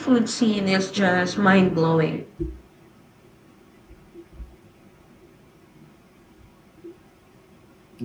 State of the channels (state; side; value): identical; both; correlation 1.00